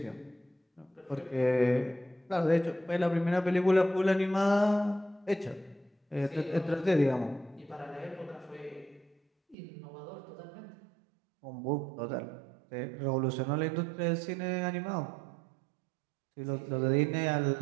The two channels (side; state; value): left; drops out; at 9.6 s